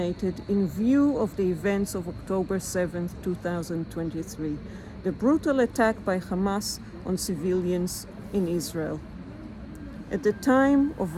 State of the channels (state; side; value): identical; both; correlation 1.00